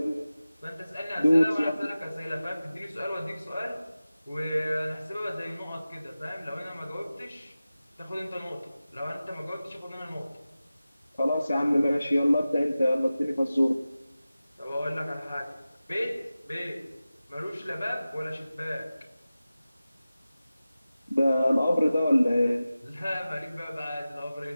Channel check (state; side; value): inverted; both; correlation -0.95